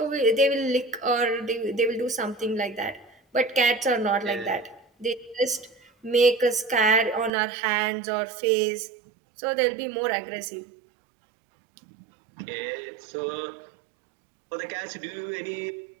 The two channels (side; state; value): left; drops out; at 7.3 s